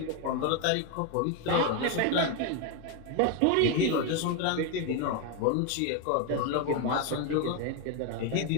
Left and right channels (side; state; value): both; different; correlation 0.02